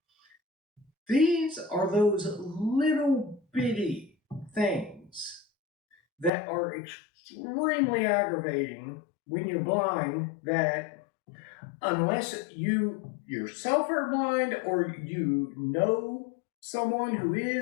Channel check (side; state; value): right; drops out; at 6.3 s